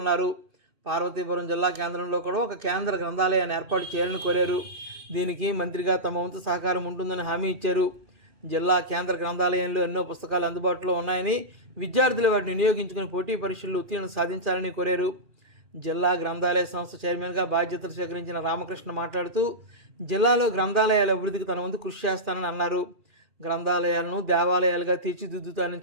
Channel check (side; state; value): left; late; 2.5 ms